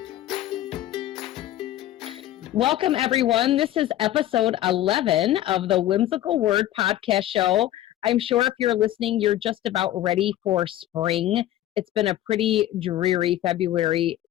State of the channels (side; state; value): right; quieter; 13.6 dB